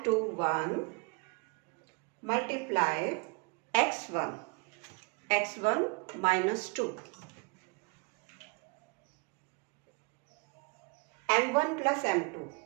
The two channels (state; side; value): quieter; left; 31.6 dB